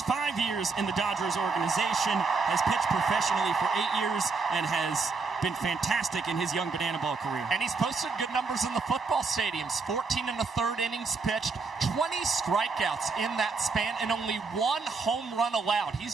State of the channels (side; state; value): left; quieter; 4.5 dB